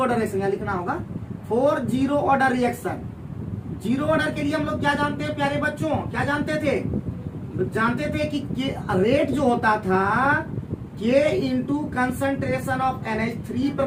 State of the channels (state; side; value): identical; both; correlation 1.00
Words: ऑर्डर रिएक्शन लिखना होगा, 4 zero order reaction. Zero order के लिए हम लोग क्या जानते हैं प्यारे बच्चों, क्या जानते थे कि रेट जो होता था K into concentration of NH3 पर